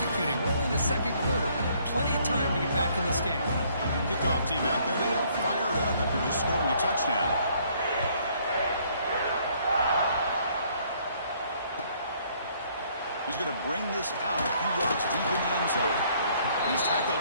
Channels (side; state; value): both; inverted; correlation -0.64